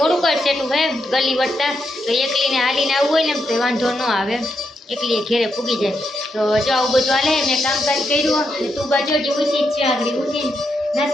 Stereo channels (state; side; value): normal; both; correlation 0.82